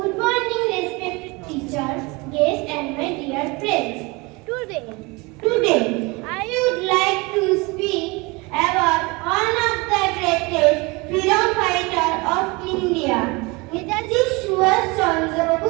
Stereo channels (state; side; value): quieter; left; 25.8 dB